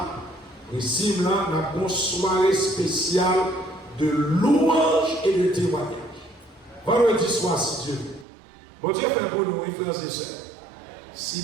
et si nous avons une soirée spéciale de louange et de témoignage. Vendredi soir, si Dieu veut. Bon Dieu fait pour nous, frères et sœurs. Si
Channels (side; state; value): left; drops out; at 8.2 s